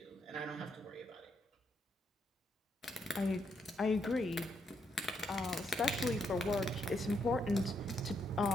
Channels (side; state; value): both; normal; correlation 0.77